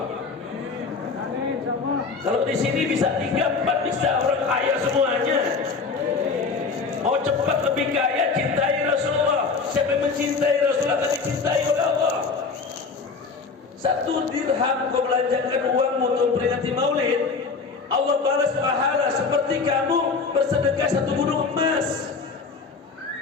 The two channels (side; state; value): right; quieter; 4.7 dB